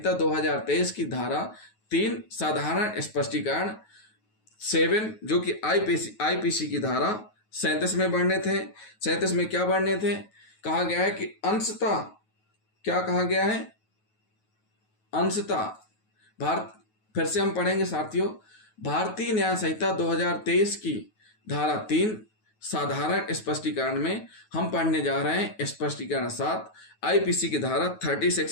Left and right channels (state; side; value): late; right; 9.3 ms